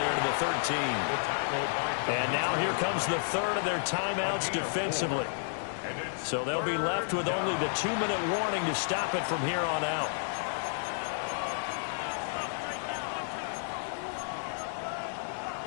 to the 13. And now here comes the third of their timeouts defensively. So they'll be left with only the 2-minute warning to stop it from here on out.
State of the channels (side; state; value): right; silent; digital silence